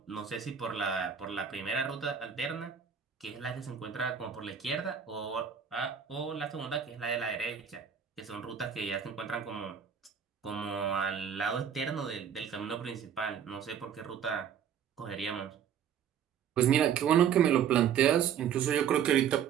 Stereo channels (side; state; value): left; quieter; 8.1 dB